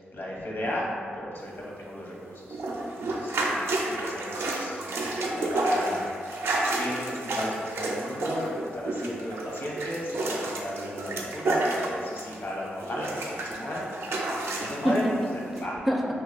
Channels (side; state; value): both; normal; correlation 0.77